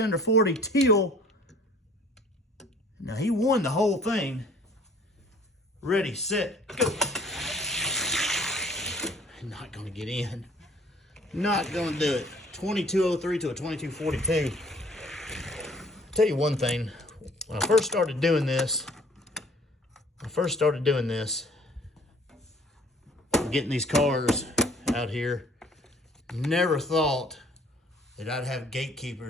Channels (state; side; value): normal; both; correlation 0.55